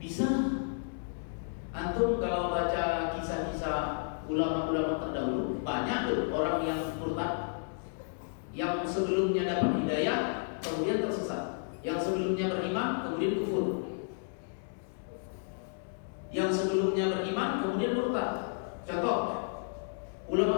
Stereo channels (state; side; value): silent; right; digital silence